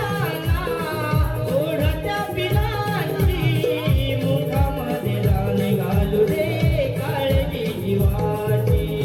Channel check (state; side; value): identical; both; correlation 1.00